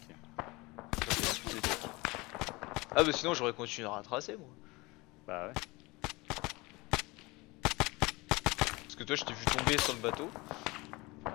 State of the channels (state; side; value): quieter; right; 23.8 dB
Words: Ah bah sinon j'aurais continué à retracer moi. Bah ouais. Parce que toi je t'ai vu tomber sur le bateau.